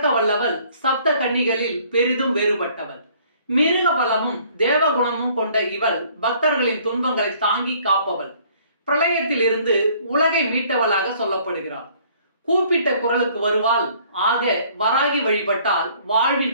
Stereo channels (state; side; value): inverted; both; correlation -0.58